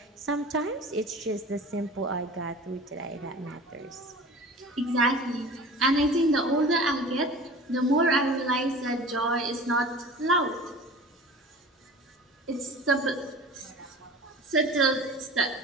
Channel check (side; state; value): both; normal; correlation 0.39